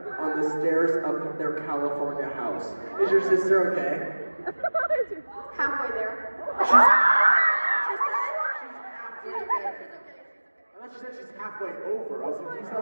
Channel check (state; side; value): inverted; both; correlation -1.00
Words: on the stairs of their California house. Is your sister okay? Halfway there. She's halfway there. I thought she said she's halfway over. I was like, she's